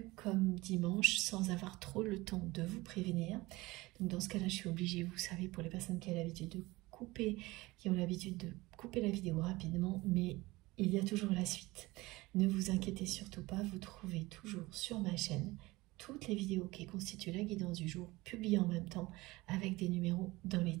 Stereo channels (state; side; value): quieter; left; 20.7 dB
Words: comme dimanche sans avoir trop le temps de vous prévenir. Donc dans ce cas-là, je suis obligée, vous savez, pour les personnes qui ont l'habitude de couper, qui ont l'habitude de couper la vidéo rapidement, mais il y a toujours la suite. Ne vous inquiétez surtout pas, vous trouvez toujours sur ma chaîne toutes les vidéos qui constituent la guidance du jour, publiées en même temps avec des numéros dans les